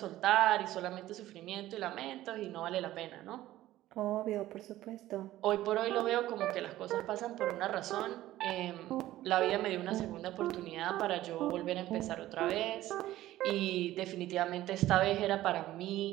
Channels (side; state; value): left; quieter; 15.0 dB